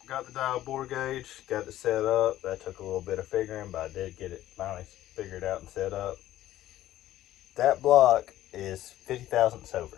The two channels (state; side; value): quieter; right; 13.8 dB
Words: got the dial bore gauge, got it set up. That took a little bit of figuring, but I did get it finally figured out and set up. That block is 50 thousandths